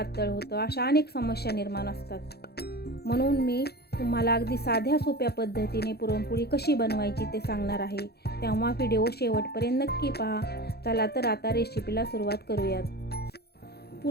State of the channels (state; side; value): late; right; 0.47 ms